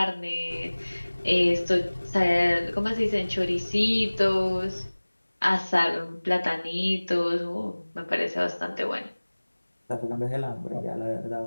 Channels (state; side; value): inverted; both; correlation -1.00